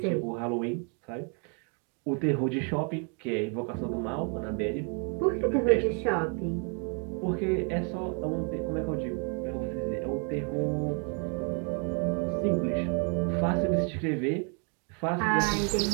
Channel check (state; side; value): quieter; left; 38.4 dB